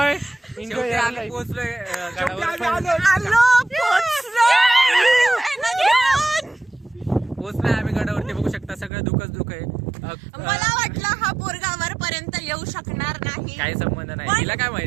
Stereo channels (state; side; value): drops out; left; at 8.9 s